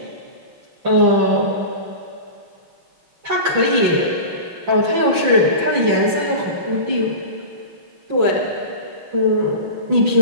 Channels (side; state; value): left; late; 5.9 ms